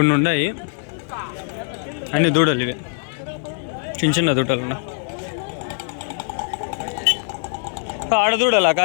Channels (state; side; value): silent; right; 64 dB below the other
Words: ఉన్నాయి. అన్ని దూడలు ఇవి, చిన్న చిన్న దూడలు ఉన్నాయి. ఆడ దూడలా కా